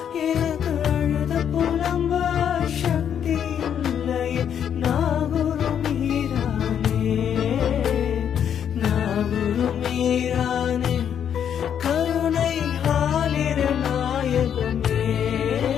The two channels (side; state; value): right; quieter; 8.8 dB